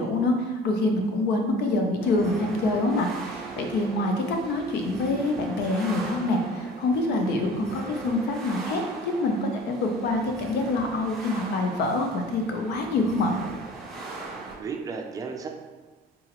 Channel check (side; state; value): both; normal; correlation 0.45